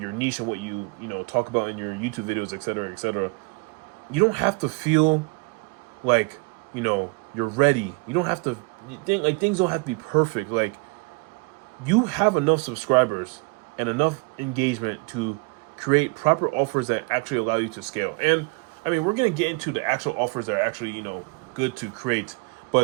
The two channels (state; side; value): quieter; left; 29.4 dB